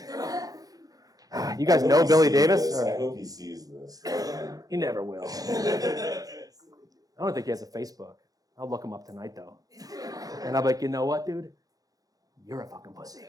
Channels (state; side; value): late; left; 0.18 ms